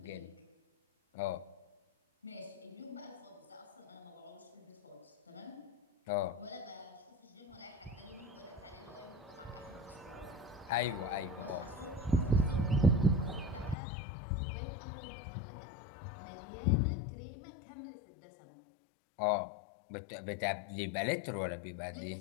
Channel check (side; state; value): right; drops out; at 13.8 s